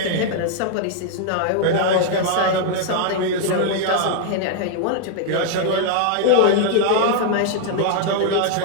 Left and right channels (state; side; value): different; both; correlation 0.00